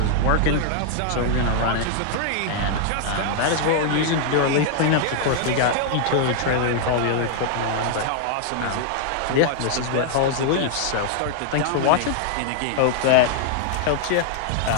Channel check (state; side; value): different; both; correlation -0.01